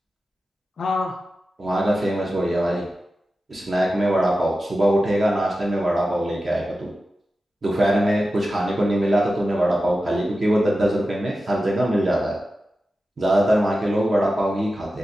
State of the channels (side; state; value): both; normal; correlation 0.93